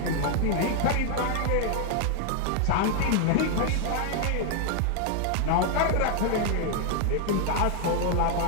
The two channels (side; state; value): both; different; correlation 0.00